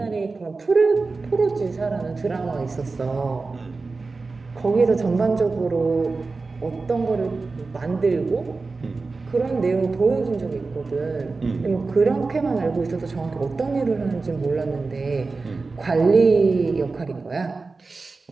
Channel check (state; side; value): quieter; left; 3.9 dB